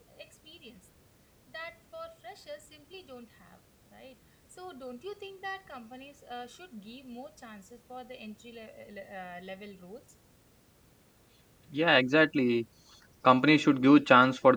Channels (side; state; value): both; identical; correlation 1.00